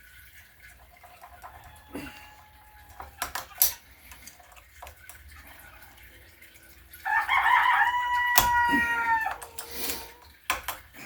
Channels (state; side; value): identical; both; correlation 1.00